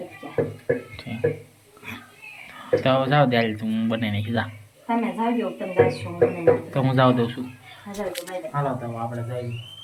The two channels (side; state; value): both; identical; correlation 1.00